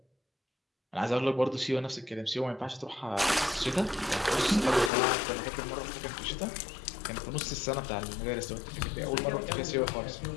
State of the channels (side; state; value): right; drops out; at 4.9 s